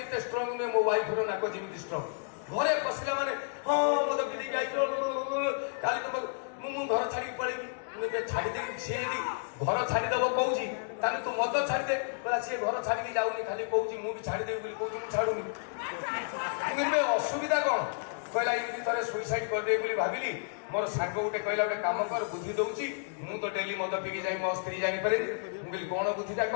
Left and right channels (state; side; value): silent; right; digital silence